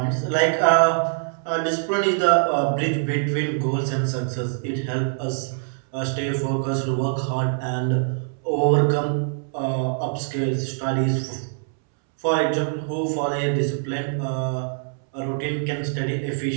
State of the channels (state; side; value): silent; left; 63 dB below the other